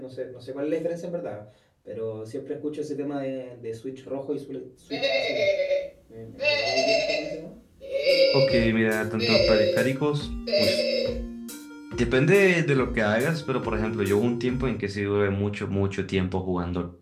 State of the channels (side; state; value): both; identical; correlation 1.00